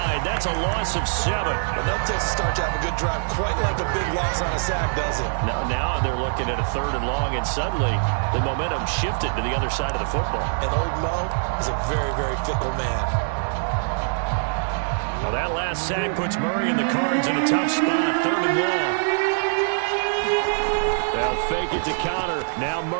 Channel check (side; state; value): left; silent; digital silence